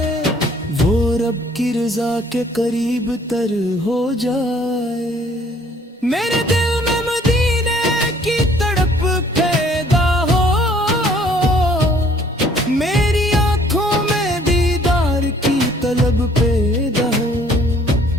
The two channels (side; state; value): both; normal; correlation 0.59